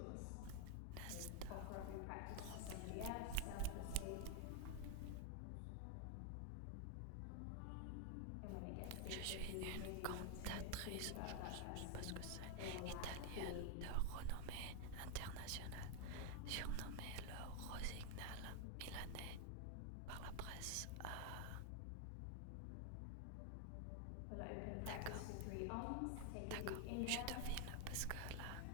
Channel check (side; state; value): both; different; correlation 0.01